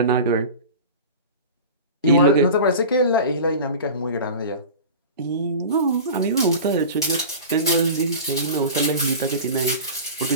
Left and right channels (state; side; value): inverted; both; correlation -0.34